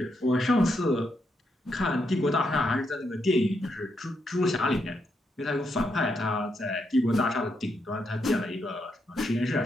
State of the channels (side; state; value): both; normal; correlation 0.80